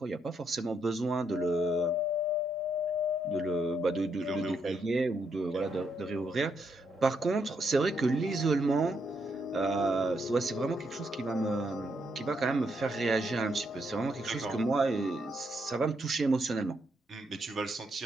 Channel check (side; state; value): both; normal; correlation 0.77